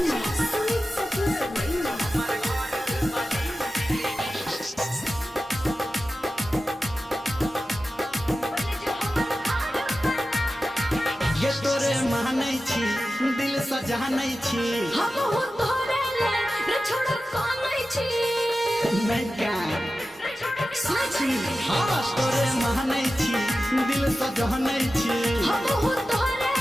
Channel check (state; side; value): normal; both; correlation 0.94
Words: स्वीट सती सवैया ये तोरे मानै छी दिल सजानै छी हम हो तोरे ले रे छोड़ कानै छी नहीं का साची हाँ तोरे मानै छी दिल सजानै छी हम हो तोरे